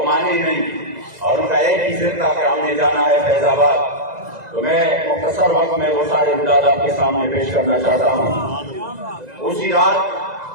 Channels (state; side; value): late; left; 2.0 ms